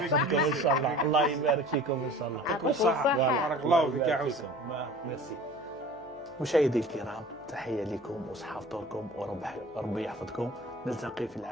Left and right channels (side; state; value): left; noise; hum, 26 dB below the sound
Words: ان شاء الله، الله يبارك فيكم ان شاء الله. يعطيكم الصحة. بارك الله فيك يا يبارك حسن. فيكم. ميرسي. مشاهدي الكرام، تحية لكم وصحة فطوركم وربي يحفظكم. نلتقي في